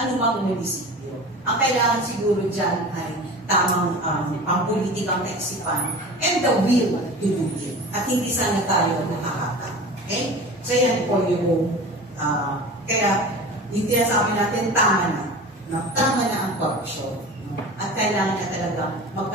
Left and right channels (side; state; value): both; normal; correlation 0.35